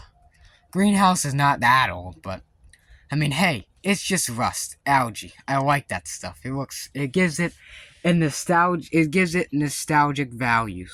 Greenhouse is not that old, but I mean, hey, it's just rust, algae. I like that stuff. It gives it nostalgic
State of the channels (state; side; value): identical; both; correlation 1.00